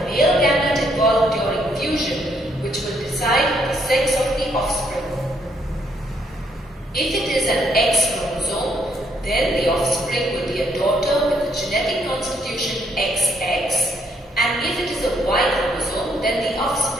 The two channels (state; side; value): normal; both; correlation 0.71